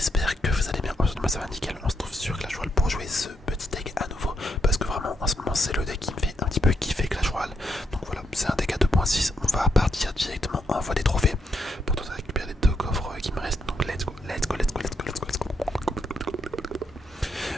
que vous allez bien. Aujourd'hui moi ça va nickel, on se trouve sur Clash Royale pour jouer ce petit deck à nouveau. Parce que vraiment en ce moment c'est le deck qui me fait un petit peu kiffer Clash Royale. Donc voilà, c'est un deck à 2.6, on va partir directement en voie des trophées. Pour tenter de récupérer les deux coffres qui me restent. Donc let's go, let's go, let's go, let's go, let's go, let's go.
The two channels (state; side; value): normal; both; correlation 0.79